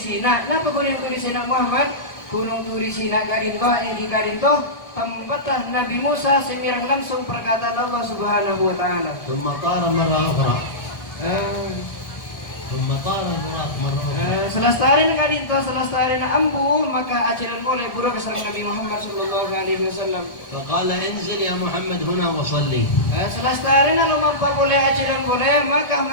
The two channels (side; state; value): right; late; 1.3 ms